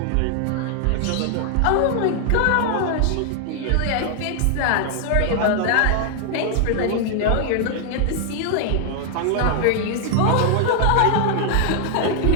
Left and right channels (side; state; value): both; different; correlation 0.00